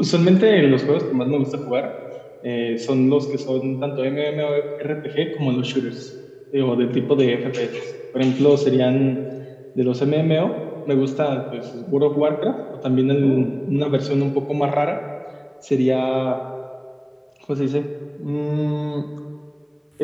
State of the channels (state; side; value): identical; both; correlation 1.00